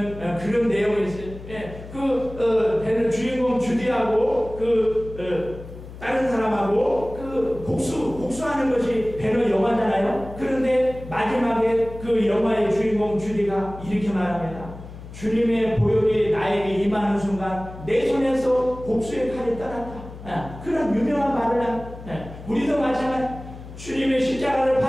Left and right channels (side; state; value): left; noise; hum, 14 dB below the sound